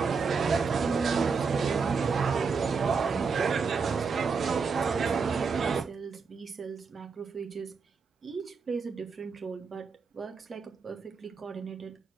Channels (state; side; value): quieter; left; 5.2 dB